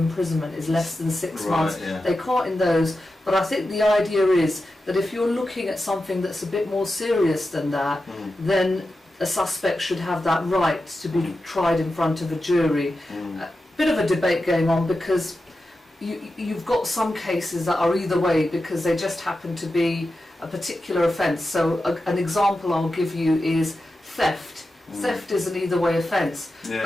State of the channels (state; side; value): normal; both; correlation 0.91